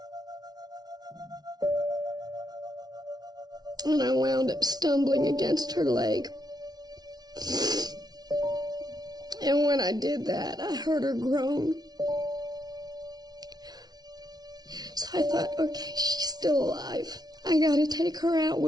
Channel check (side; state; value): left; late; 0.19 ms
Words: And I wound up stumbling against her leg. And when I did that, I heard her groan. So I thought, okay, she's still alive. I gotta take her out